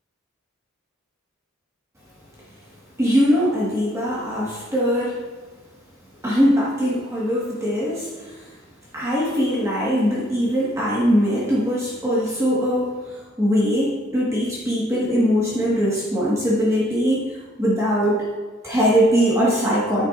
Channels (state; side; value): normal; both; correlation 0.66